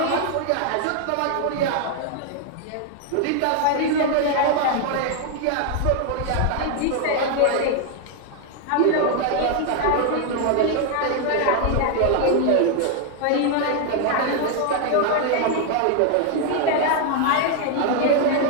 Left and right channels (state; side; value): different; both; correlation 0.01